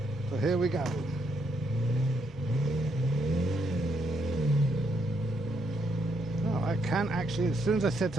So here we go. Oh, I can actually, as soon as I set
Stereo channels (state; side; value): normal; both; correlation 0.76